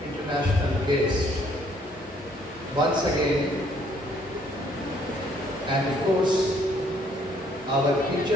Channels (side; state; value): both; normal; correlation 0.64